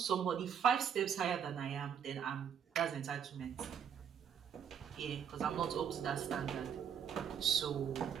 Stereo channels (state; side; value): quieter; left; 8.0 dB